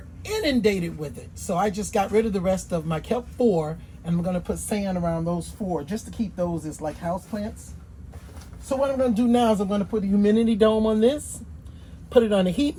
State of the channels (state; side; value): identical; both; correlation 1.00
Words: inundated with it, so I just got rid of the rest of them. I kept 4, and I'm going to put sand around those 4 just to keep those as like house plants. So what I'm going to do now is I'm going to put a humidity dome on this, put it on a heat